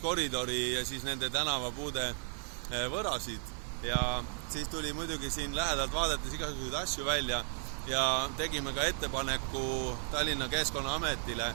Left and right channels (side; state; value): left; silent; 55 dB below the other